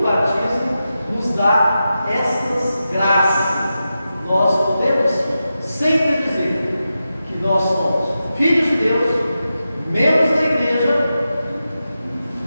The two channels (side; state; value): both; inverted; correlation -0.91